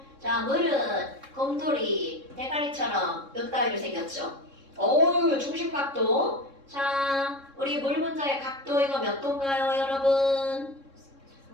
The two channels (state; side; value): late; left; 3.7 ms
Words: 자, 물은 곰돌이, 대가리처럼 몇 가지로 생겼죠? 중심각도. 자, 우리 물 분자의 각도 이거 몇 도인가요, 여러분?